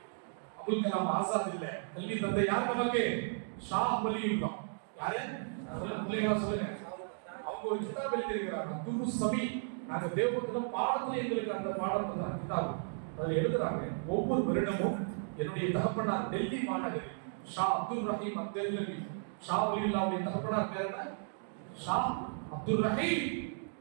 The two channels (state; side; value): silent; left; digital silence